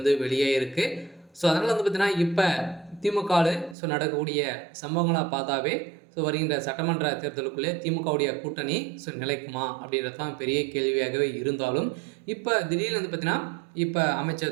வெளியாகிருக்கு. அதனால் பார்த்தீங்கன்னா இப்போ திமுகவில் நடக்கக்கூடிய நடக்கக்கூடிய பார்த்தாவே வருகின்ற சட்டமன்ற தேர்தலுக்குள்ளே திமுகவுடைய கூட்டணி நிலைக்குமா அப்படின்றது தான் பெரிய கேள்வியாகவே இருந்தாலும், இப்போ திடீர்னு பார்த்தீங்கன்னா இப்போ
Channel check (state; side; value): drops out; left; at 3.8 s